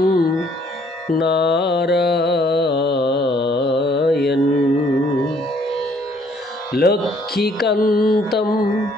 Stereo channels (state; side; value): normal; both; correlation 0.63